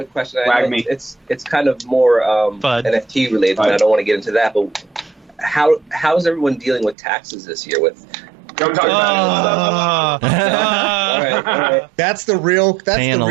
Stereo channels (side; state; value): left; drops out; at 7.0 s